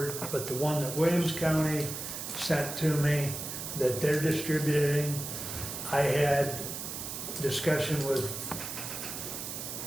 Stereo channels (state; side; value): noise; right; hiss, 6 dB below the sound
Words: but the one that Williams County sent to me, that they're distributing, I had discussion with